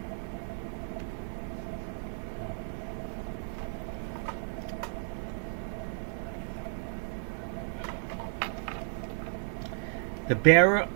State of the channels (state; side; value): silent; left; 56 dB below the other